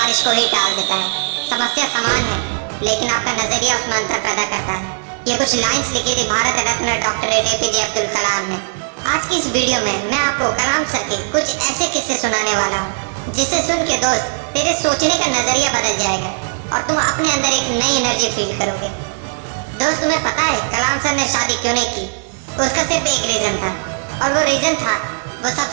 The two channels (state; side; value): silent; left; digital silence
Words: को ही टाल देता है। समस्या समान है, लेकिन आपका नजरिया उसमें अंतर पैदा करता है। ये कुछ लाइंस लिखी थी भारत रत्न डॉक्टर APJ अब्दुल कलाम ने। आज की इस वीडियो में मैं आपको कलाम सर के कुछ ऐसे किस्से सुनाने वाला हूँ जिसे सुन के दोस्त तेरे सोचने का नजरिया बदल जाएगा और तुम अपने अंदर एक नई एनर्जी फील करोगे। दोस्त, तुम्हें पता है कलाम सर ने शादी क्यों नहीं की? उसका सिर्फ एक रीजन था, और वो रीजन था वो